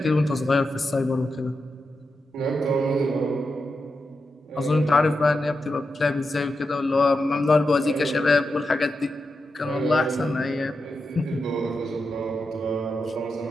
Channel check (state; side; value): normal; both; correlation 0.88